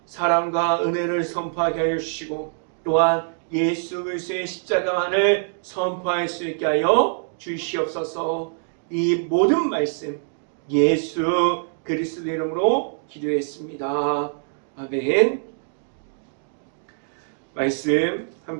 사랑과 은혜를 선포하게 하여 주시고 또한 예수 그리스도의 십자가만을 선포할 수 있게 하여 주시옵소서. 이 모든 말씀 예수 그리스도 이름으로 기도했습니다. 아멘. 말씀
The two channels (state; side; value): silent; left; digital silence